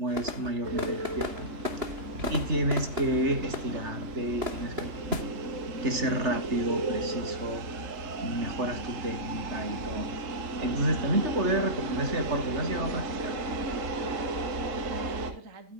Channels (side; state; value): left; late; 3.0 ms